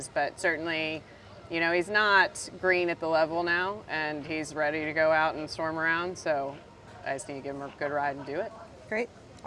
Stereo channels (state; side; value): identical; both; correlation 1.00